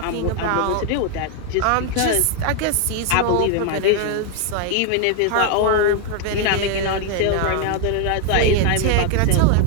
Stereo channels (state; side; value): different; both; correlation 0.00